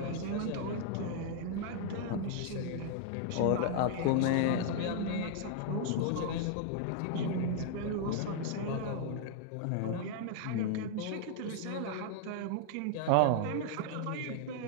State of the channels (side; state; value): both; different; correlation 0.00